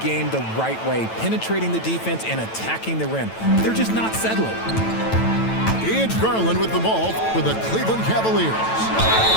the right way, penetrating the defense and attacking the rim. They're just not settling. It's Garland with the ball for the Cleveland Cavaliers.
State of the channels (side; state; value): right; late; 9.0 ms